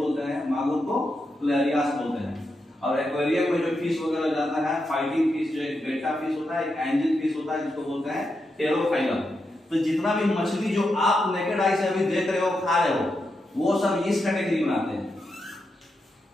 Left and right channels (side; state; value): both; normal; correlation 0.86